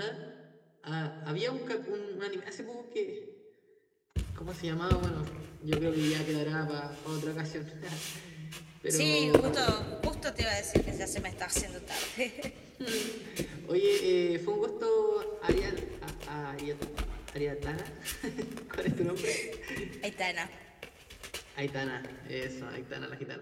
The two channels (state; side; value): identical; both; correlation 1.00